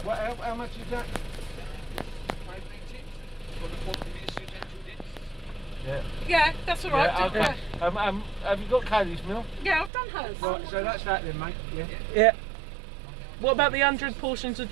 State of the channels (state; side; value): drops out; left; at 9.9 s